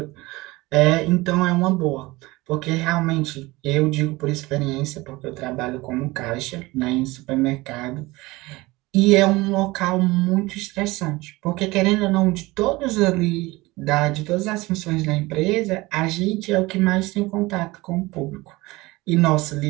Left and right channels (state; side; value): quieter; left; 21.2 dB